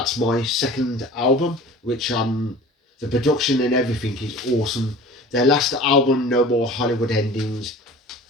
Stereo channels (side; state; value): both; normal; correlation 0.42